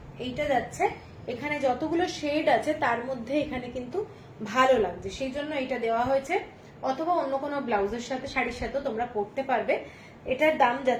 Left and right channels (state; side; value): identical; both; correlation 1.00